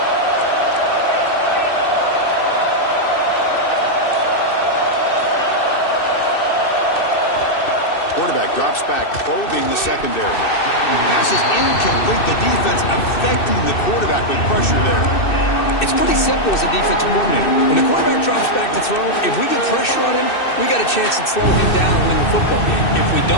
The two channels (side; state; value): right; late; 2.6 ms